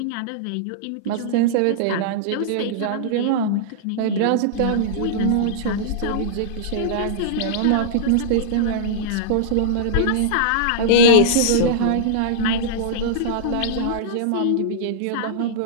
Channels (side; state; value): both; different; correlation -0.02